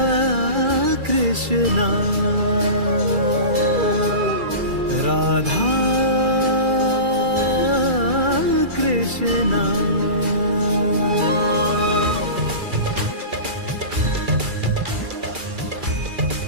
कृष्णा राधा कृष्णा।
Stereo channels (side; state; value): left; late; 2.3 ms